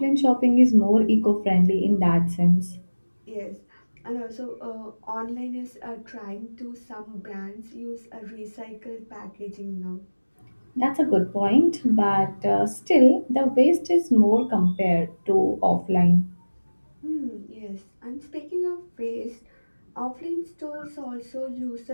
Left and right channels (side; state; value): both; inverted; correlation -1.00